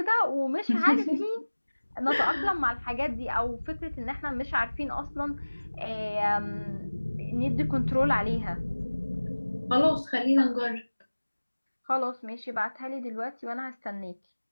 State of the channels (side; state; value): both; inverted; correlation -1.00